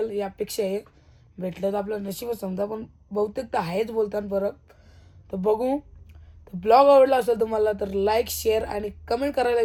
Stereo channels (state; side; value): identical; both; correlation 1.00